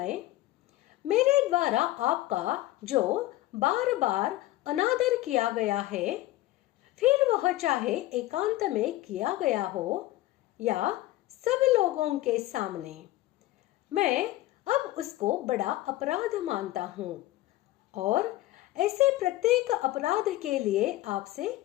मेरे द्वारा आपका जो बार बार अनादर किया गया है, फिर वह चाहे एकांत में किया गया हो या सब लोगों के सामने, मैं अब उसको बड़ा अपराध मानता हूँ और ऐसे प्रत्येक अपराध के लिए आपसे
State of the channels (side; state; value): right; quieter; 16.6 dB